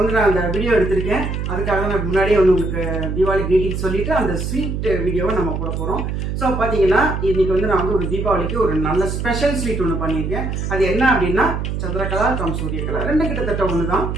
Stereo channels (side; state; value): right; noise; hum, 3 dB below the sound